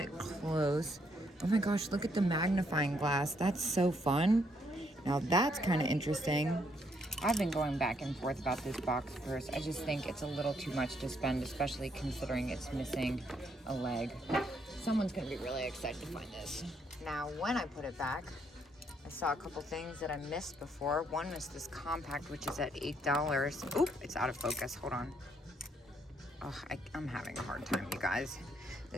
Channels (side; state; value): both; normal; correlation 0.72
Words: close. Oh my gosh, look at the magnifying glass. That's so fun. Now that's kind of interesting. I've been going back and forth about this box purse. I just think it's a little too much to spend, especially considering it's missing a leg. Someone's gonna be really excited to find this. Now, when I put it back, I saw a couple things that I missed before. One was this compact, which is at $8. Oop, it's out of focus, hold on. Oh, I'm having a hard time, you guys.